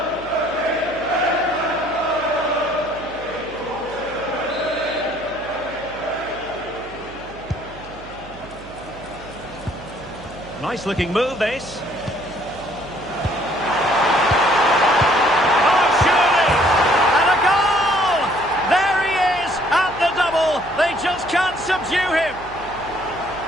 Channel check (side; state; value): right; noise; hum, 19 dB below the sound